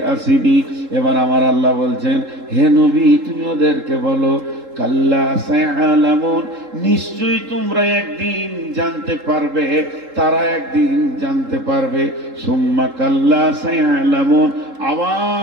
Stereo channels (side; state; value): left; late; 3.8 ms